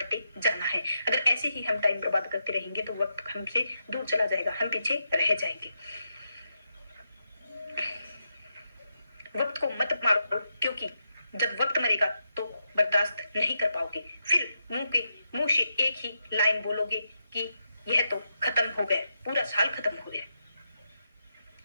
जाना है। अगर ऐसे ही हम टाइम बर्बाद करते रहेंगे तो वक्त हमसे दूर चला जाएगा, हम पीछे रह जाएंगे। वक्त को मत मारो, क्योंकि जब वक्त मरेगा तो बर्दाश्त नहीं कर पाओगे। फिर मुंह से एक ही लाइन बोलोगे कि यह तो खत्म हो गया, पूरा साल खत्म हो गया।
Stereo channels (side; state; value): both; inverted; correlation -0.85